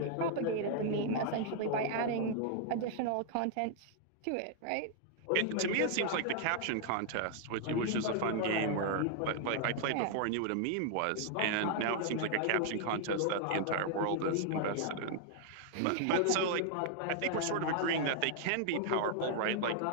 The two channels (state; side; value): different; both; correlation 0.00